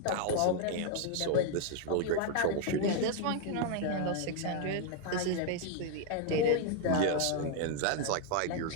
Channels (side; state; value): both; different; correlation 0.01